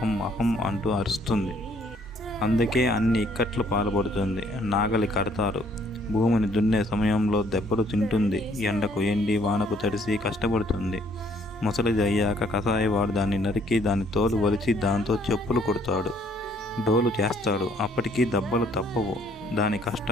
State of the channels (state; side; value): normal; both; correlation 0.63